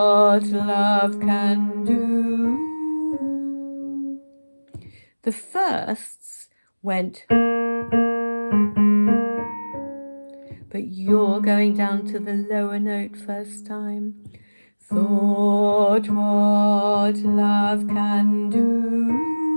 love can do. The firsts went, but you're going down to the lower note first time. Thought what love can do.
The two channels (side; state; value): both; inverted; correlation -1.00